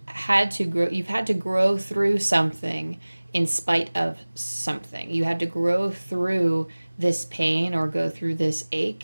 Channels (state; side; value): inverted; both; correlation -1.00